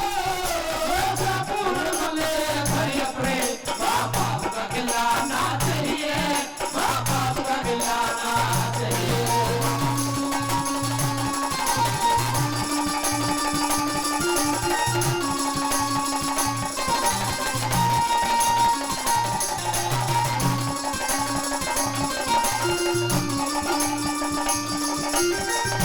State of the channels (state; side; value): identical; both; correlation 1.00